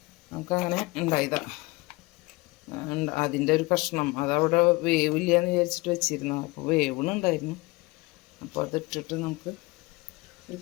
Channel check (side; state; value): right; quieter; 23.3 dB